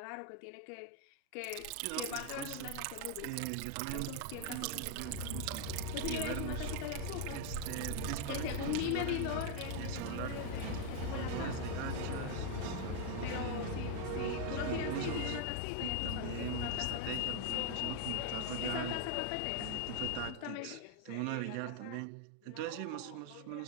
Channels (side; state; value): both; different; correlation 0.00